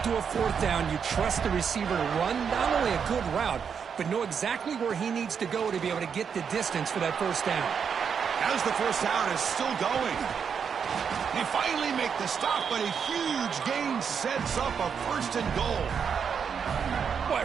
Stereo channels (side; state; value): left; quieter; 6.8 dB